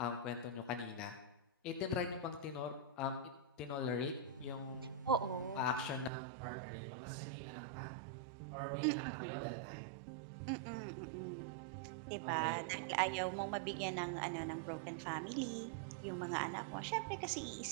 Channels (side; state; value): left; drops out; at 6.1 s